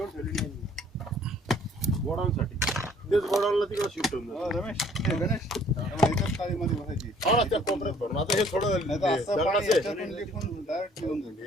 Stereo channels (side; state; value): both; normal; correlation 0.58